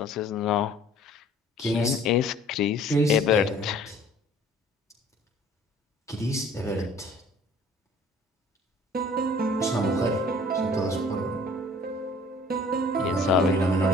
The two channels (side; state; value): both; normal; correlation 0.52